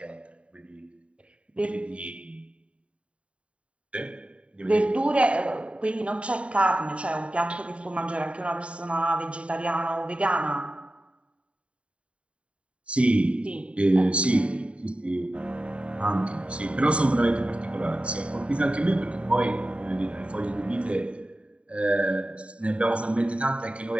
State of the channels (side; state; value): left; late; 0.062 ms